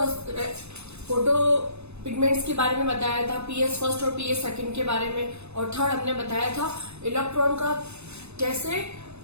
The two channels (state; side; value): late; left; 0.80 ms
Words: पिगमेंट्स के बारे में बताया था, पीएस फर्स्ट और पीएस सेकंड के बारे में। और थर्ड हमने बताया था इलेक्ट्रॉन का कैसे